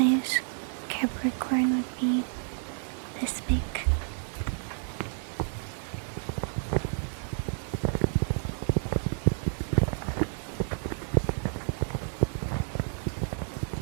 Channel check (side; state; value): left; silent; 58 dB below the other